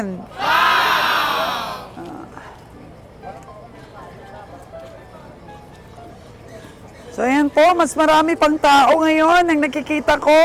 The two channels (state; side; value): identical; both; correlation 1.00